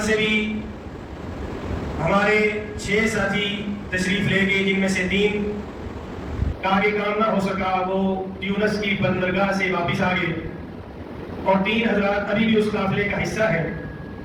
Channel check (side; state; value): both; identical; correlation 1.00